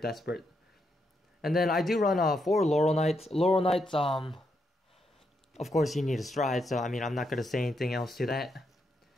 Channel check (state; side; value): normal; both; correlation 0.80